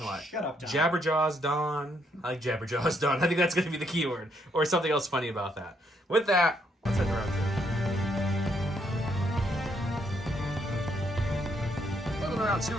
a lot. Shut up, Don. Jabberjaws Don. I like Jabberjaws Don. I think that's going to be the keyword. Or something else funny about that. With that, let's head to round 2. Moving around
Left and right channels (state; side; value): normal; both; correlation 0.73